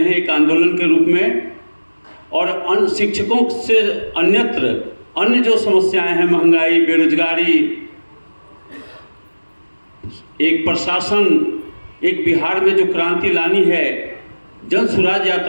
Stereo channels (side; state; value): both; inverted; correlation -1.00